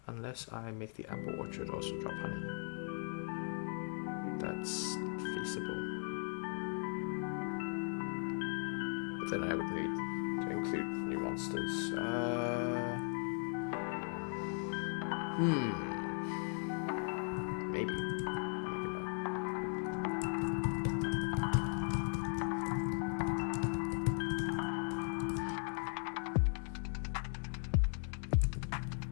Unless I make the apple orchard also drop honey. That's feasible. But then I would need to include new monsters. Maybe.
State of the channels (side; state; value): right; silent; 52 dB below the other